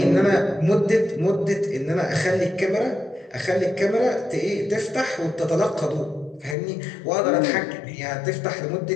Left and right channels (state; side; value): drops out; right; at 6.6 s